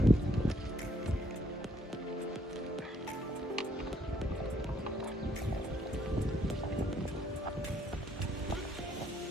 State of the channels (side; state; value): both; normal; correlation 0.68